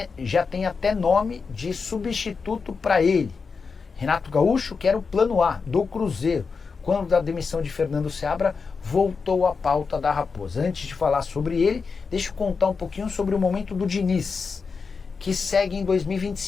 até nome de substituto para ele. Renato Gaúcho, que era o plano A do Cruzeiro. Quando da demissão de Fernando Seabra, voltou à pauta da Raposa. Antes de falar sobre ele, deixa eu contar um pouquinho sobre o momento do Diniz, que segue em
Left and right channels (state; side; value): quieter; right; 5.1 dB